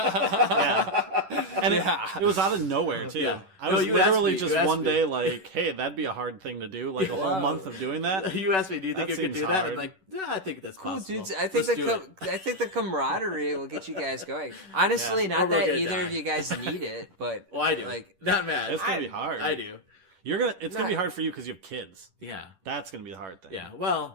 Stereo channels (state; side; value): late; left; 10 ms